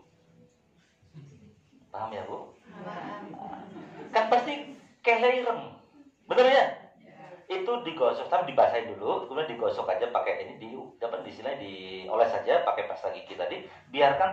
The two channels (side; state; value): both; identical; correlation 1.00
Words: Paham ya, Bu? Kan pasti kelereng. Benar ya? Itu digosok, tapi dibasahin dulu, kemudian digosok aja pakai ini dapat dioles saja pakai pasta gigi tadi,